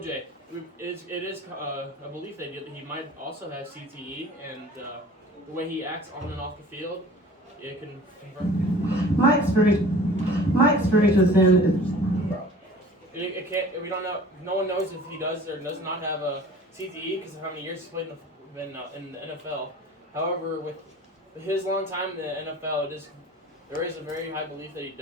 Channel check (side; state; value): both; normal; correlation 0.45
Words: it is a belief that he might also have CTE, and the way he acts on and off the field, it can confirm. My experience with him is It can't. We don't know. No one knows if he does or does not have a CTE because of how many years he's played in the NFL. However, with his long time in the NFL, it is there is a very high belief that he